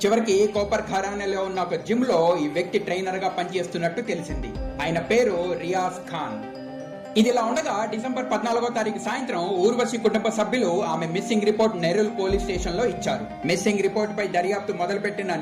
చివరికి కోపర్ ఖైరానేలో ఉన్న ఒక జిమ్ లో ఈ వ్యక్తి ట్రైనర్ గా పనిచేస్తున్నట్టు తెలిసింది. ఆయన పేరు రియాజ్ ఖాన్. ఇదిలా ఉండగా డిసెంబర్ 14వ తారీఖు సాయంత్రం ఊర్వశి కుటుంబ సభ్యులు ఆమె మిస్సింగ్ రిపోర్ట్ నెరూల్ పోలీస్ స్టేషన్ లో ఇచ్చారు. మిస్సింగ్ రిపోర్ట్ పై దర్యాప్తు మొదలుపెట్టిన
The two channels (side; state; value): both; identical; correlation 1.00